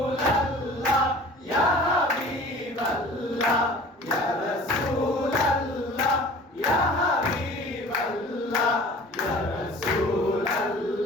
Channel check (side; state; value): both; normal; correlation 0.45